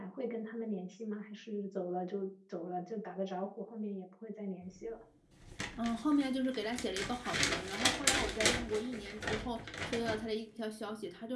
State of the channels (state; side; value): identical; both; correlation 1.00